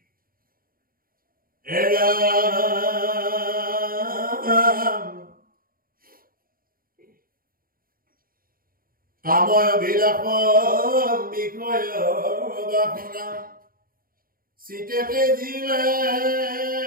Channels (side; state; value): left; late; 0.42 ms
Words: কাময় বিলাস বিষয় বাসনা চিতেতে জিলে